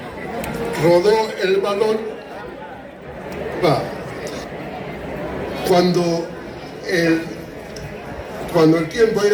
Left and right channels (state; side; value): identical; both; correlation 1.00